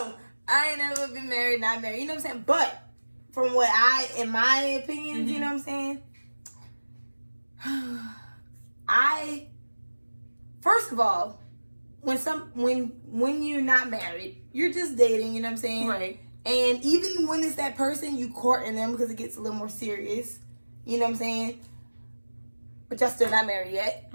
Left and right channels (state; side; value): inverted; both; correlation -1.00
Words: I ain't never been married, not married. You know what I'm saying? But from what in my opinions, you know what I'm saying? First of all, when you're not married, you're just dating, you know what I'm saying? Right. And even when it's that person, you courting them because it gets a little more serious. You know what I'm saying? But y'all still not married yet.